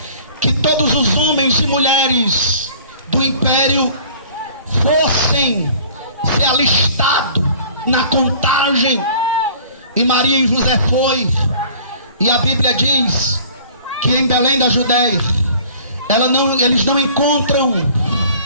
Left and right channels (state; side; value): inverted; both; correlation -0.50